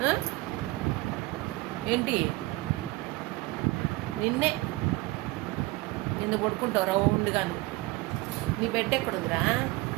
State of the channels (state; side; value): quieter; left; 21.0 dB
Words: ఏంటి నిన్ను పడుకుంటావు రౌండ్గాను. నీ బెడ్ ఎక్కడుందిరా?